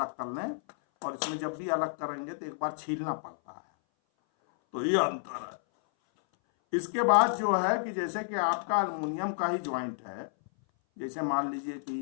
कर लें, और इसमें जब भी अलग करेंगे तो एक बार छीलना पड़ता है। तो ये अंतर है। इसके बाद जो है कि जैसे कि आपका अल्युमिनियम का ही ज्वाइंट है, जैसे मान लीजिए कि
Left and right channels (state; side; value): silent; right; 57 dB below the other